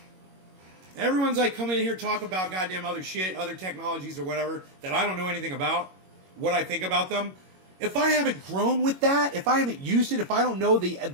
Everyone's like coming in here talk about goddamn other shit, other technologies or whatever that I don't know anything about, what I think about them. If I haven't grown with that, if I haven't used it, if I don't know the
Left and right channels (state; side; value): late; left; 21 ms